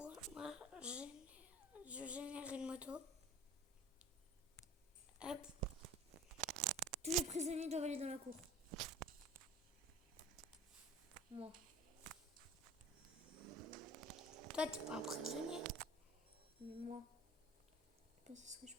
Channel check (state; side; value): normal; both; correlation 0.43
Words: Moi, je génère une moto. Hop. Tous les prisonniers doivent aller dans la cour. Moi. Toi, t'es pas un prisonnier. Mais moi. Je sais pas ce que je